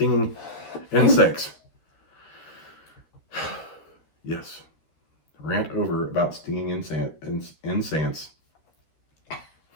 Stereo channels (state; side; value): late; right; 13 ms